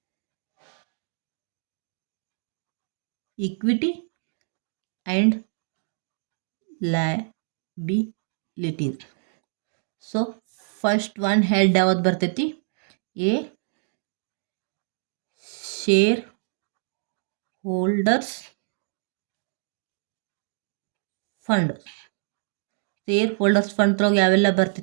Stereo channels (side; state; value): left; silent; digital silence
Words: equity and liabilities. So first one head ಯಾವ್ದು ಬರ್ತೈತಿ, A share holders fund. Share holders fund ಒಳಗೆ ಯಾವೆಲ್ಲ